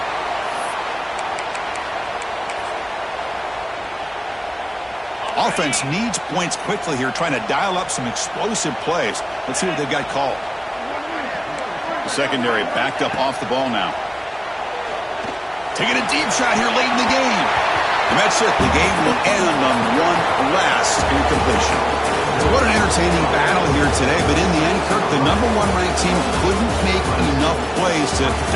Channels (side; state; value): both; identical; correlation 1.00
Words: Offense needs points quickly here, trying to dial up some explosive plays. Let's see what they've got called. The secondary backed up off the ball now. Taking a deep shot here late in the game. And that's it. The game will end on one last incompletion. So what an entertaining battle here today. But in the end, Kirk, the #1 ranked team couldn't make enough plays to